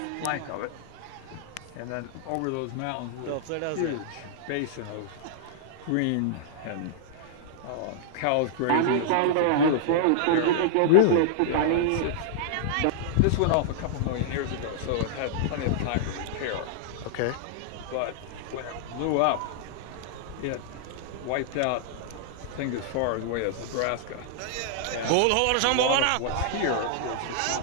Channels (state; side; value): different; both; correlation -0.01